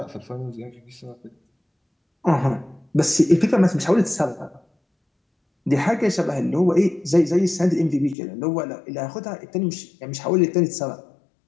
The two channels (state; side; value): drops out; right; at 8.2 s